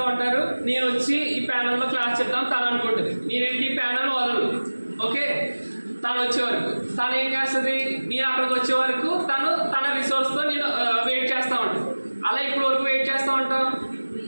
ఉంటారు, నేను వచ్చి ఈ ప్యానల్లో క్లాస్ చెప్తాను తను అనుకుంటుంది. నేనేంటి ఈ ప్యానల్ వదలను. ఓకే, తను వచ్చే వరకు తను ఏం చేస్తుంది? నేను అక్కడికి వచ్చే వరకు తను తన రిసోర్స్తో నేను వెయిట్ చేస్తూ ఉంటాను. అలా ఇప్పుడు వరకు వెయిట్ చేస్తూ ఉంటాం.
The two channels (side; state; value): both; inverted; correlation -1.00